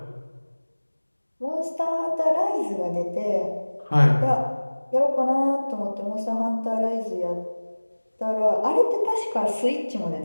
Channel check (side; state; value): both; inverted; correlation -1.00